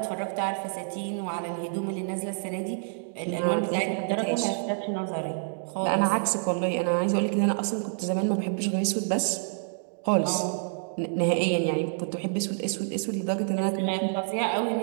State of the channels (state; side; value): silent; left; digital silence